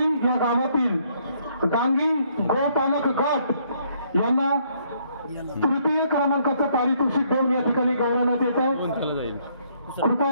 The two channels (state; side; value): inverted; both; correlation -0.68